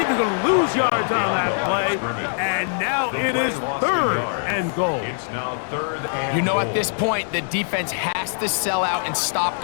going to lose yards on that play. And now it is 3rd and goal. It's now 3rd and You know, goal. at this point, the defense has to sell out and stop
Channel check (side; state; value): right; silent; digital silence